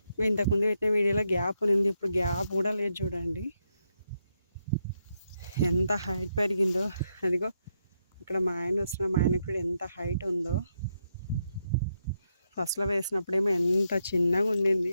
ఇంతకుముందు పెట్టిన వీడియోలో గ్యాప్ ఉంది, ఇప్పుడు గ్యాప్ కూడా లేదు. చూడండి ఎంత హైట్ పెరిగిందో. అదిగో అక్కడ మా ఆయన వస్తున్న, మా ఆయనకు కూడా ఎంత హైట్ ఉందో. ఫస్ట్లో వేసినప్పుడేమో ఎంత చిన్నగా ఉండింది,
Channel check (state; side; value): inverted; both; correlation -0.80